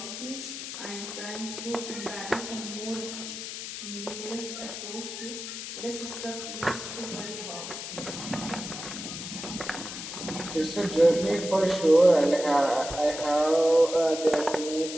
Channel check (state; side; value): noise; left; hiss, 8 dB below the sound